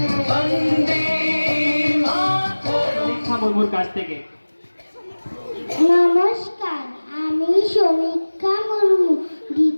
বন্দে মাতরম। দীক্ষা মুর্মুর কাছ থেকে। নমস্কার আমি সমীক্ষা মুর্মু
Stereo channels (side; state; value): both; inverted; correlation -1.00